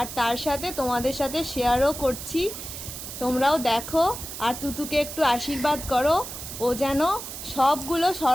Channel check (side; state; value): right; noise; hiss, 9 dB below the sound